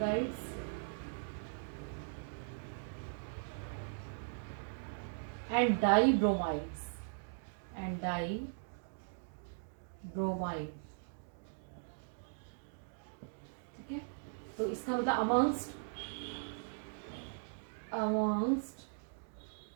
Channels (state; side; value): silent; left; digital silence